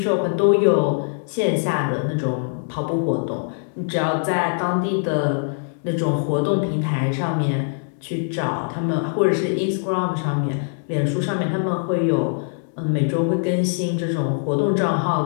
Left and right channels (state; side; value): silent; right; digital silence